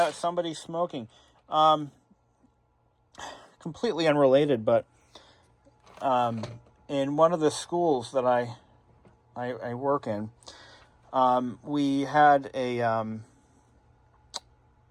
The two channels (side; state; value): both; identical; correlation 1.00